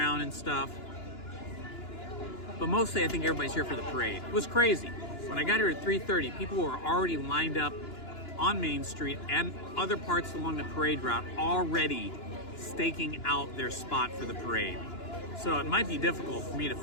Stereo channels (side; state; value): right; late; 2.9 ms